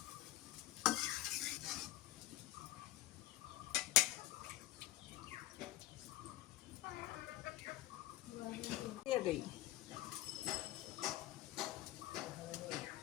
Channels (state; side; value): quieter; right; 15.7 dB